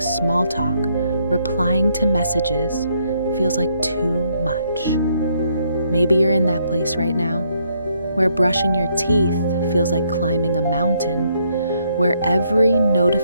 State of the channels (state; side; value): inverted; both; correlation -0.72